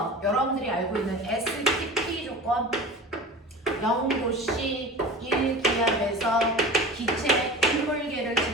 여러분들이 알고 있는 STP 조건 0도씨 1기압에서 기체 일몰계를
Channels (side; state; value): both; normal; correlation 0.35